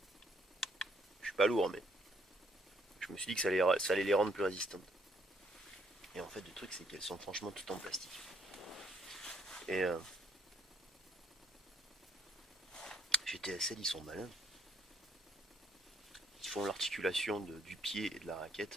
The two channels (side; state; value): both; normal; correlation 0.69